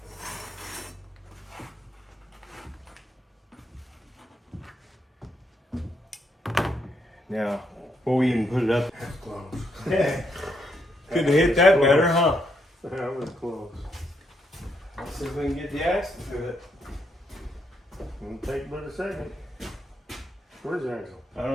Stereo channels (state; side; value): normal; both; correlation 0.77